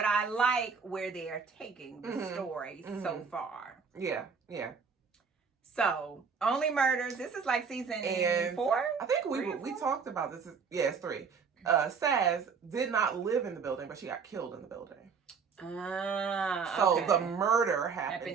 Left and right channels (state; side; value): quieter; left; 5.7 dB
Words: I like where they are taking the story so far. Yeah. Yeah. So, Only Murders. This is like season 4? I think we talked about this. It's 3. Saz did not live in the building, but she got killed in the building. So the murder